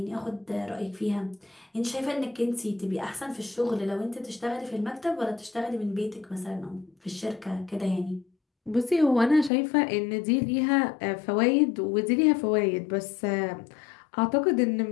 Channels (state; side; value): drops out; right; at 9.5 s